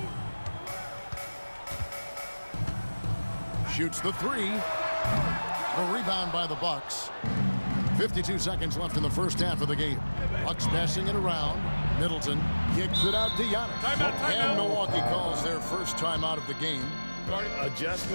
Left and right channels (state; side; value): inverted; both; correlation -1.00